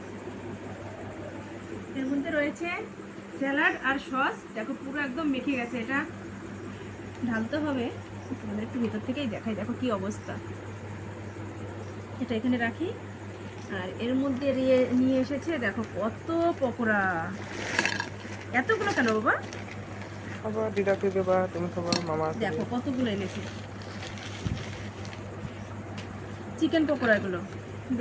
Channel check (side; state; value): both; identical; correlation 1.00